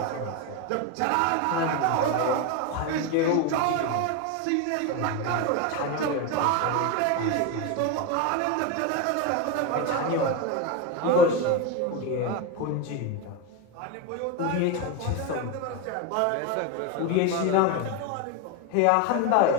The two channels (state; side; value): different; both; correlation 0.03